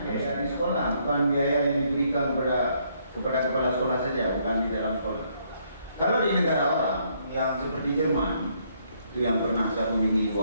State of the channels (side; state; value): both; inverted; correlation -0.70